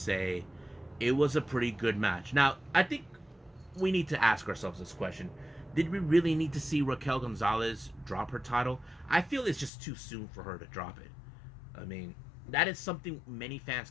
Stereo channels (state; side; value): drops out; right; at 9.7 s